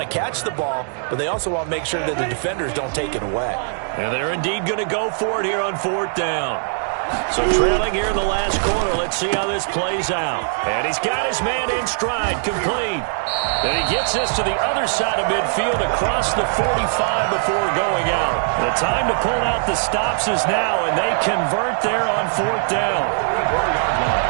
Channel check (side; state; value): left; silent; digital silence